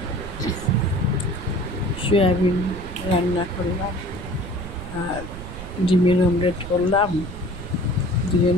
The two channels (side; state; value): right; noise; rumble, 10 dB below the sound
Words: সয়াবিন রান্না করলাম আর ডিমের অমলেট করলাম,